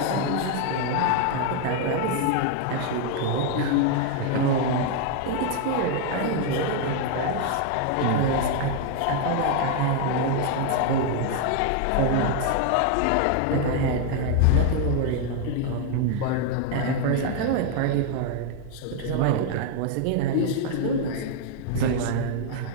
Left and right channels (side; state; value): both; different; correlation 0.00